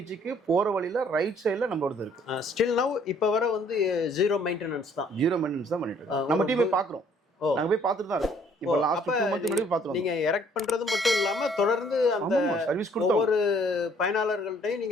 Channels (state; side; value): normal; both; correlation 0.61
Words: போற வழியில ரைட் சைடுல நம்மளோடது இருக்கு. ஸ்டில் நவ் இப்போ வர வந்து ஜீரோ மெயின்டெனன்ஸ் தான் பண்ணிட்டு இருக்கோம். நம்ம டீம் போய் பார்க்குறோம், நாங்கள் போய் பார்த்துட்டு தான் இருக்கோம். இப்போ லாஸ்ட் 2 மந்த் முன்னாடி பார்த்துருவோம். நீங்க எரெக்ட் பண்றது மட்டும் இல்லாம தொடர்ந்து அந்த சர்வீஸ் ஒவ்வொரு பயனாளர்கள்ட்டையும்